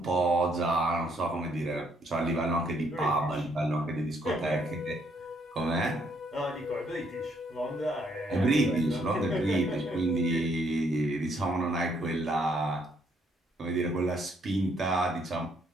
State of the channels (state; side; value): normal; both; correlation 0.70